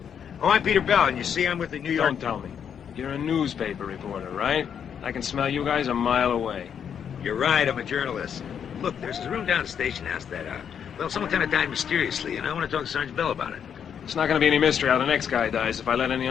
Oh, I'm Peter Bell, and you see, I'm with the New York... Don't tell me. You're a newspaper reporter, right? I can smell you guys a mile away. You're right, I'm a journalist. Look, there's a room down at the station house that, well, someone kind of died mysteriously, and I want to talk to Sergeant Bell about it. It's not going to be any mystery how the next guy dies if I let any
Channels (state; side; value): quieter; right; 8.0 dB